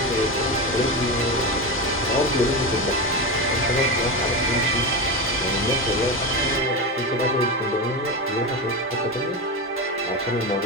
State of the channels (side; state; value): both; normal; correlation 0.18